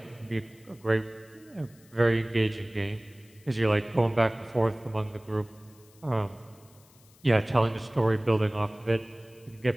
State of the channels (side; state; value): left; noise; hiss, 28 dB below the sound